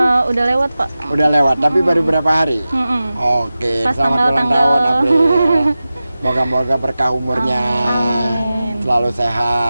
Udah lewat Pak. Udah lewat, tapi baru berapa hari? Oke, Pas selamat ulang tahun April. Moga-moga berkah umurnya. Selalu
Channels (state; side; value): inverted; both; correlation -0.95